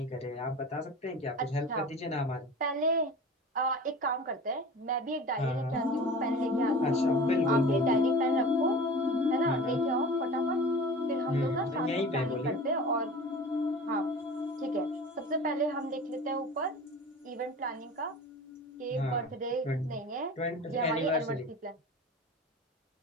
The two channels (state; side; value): normal; both; correlation 0.37